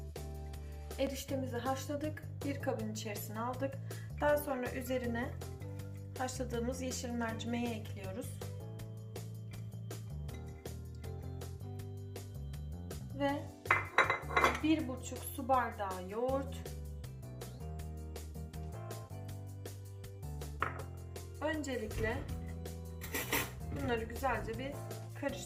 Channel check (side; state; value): both; identical; correlation 1.00